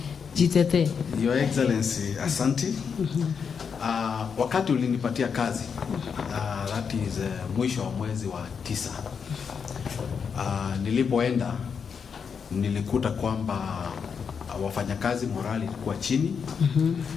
Jitete. Your Excellency, asante. Wakati ulinipatia kazi, that is mwisho wa mwezi wa 9, nilipoenda nilikuta kwamba wafanyakazi morali ilikuwa chini.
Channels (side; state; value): right; quieter; 6.4 dB